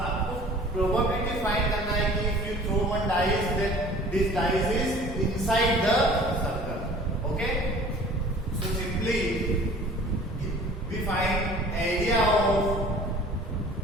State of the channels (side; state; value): both; normal; correlation 0.48